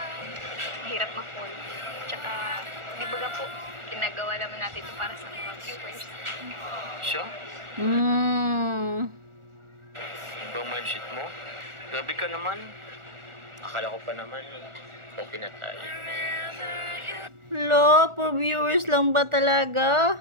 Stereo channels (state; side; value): late; left; 1.4 ms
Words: mahirap ma-fall. Tsaka, di ba nga po, ginagawa naman natin ito para sa mga viewers. Siya? Ibang mindset mo? Grabe ka naman. Akala ko pa naman, ko pinatay. Lo, for viewers lang ba talaga?